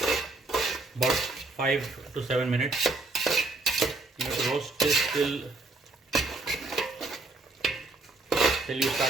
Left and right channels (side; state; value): left; quieter; 3.3 dB